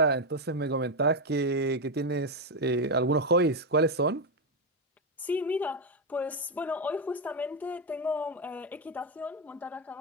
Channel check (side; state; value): both; normal; correlation 0.06